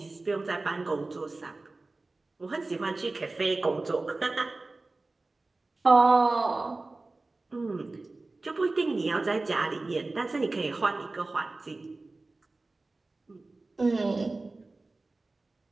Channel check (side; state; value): left; quieter; 3.3 dB